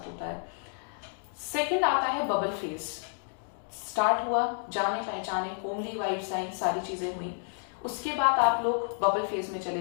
होता है। सेकंड आता है बबल फेस। स्टार्ट हुआ, जाने पहचाने, होमली वाइब्स आई, सारी चीजें हुई। उसके बाद आप लोग बबल फेज में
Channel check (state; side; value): silent; right; 58 dB below the other